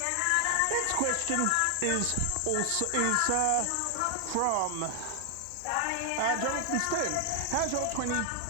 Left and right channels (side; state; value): both; different; correlation 0.00